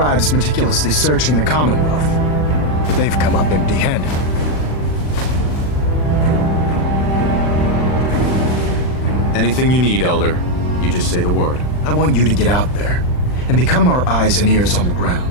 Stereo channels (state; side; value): late; right; 39 ms